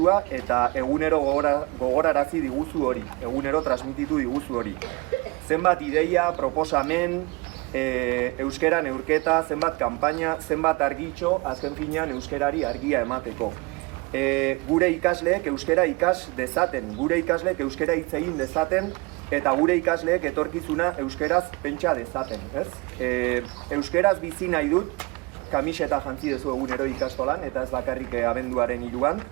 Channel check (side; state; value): left; quieter; 26.3 dB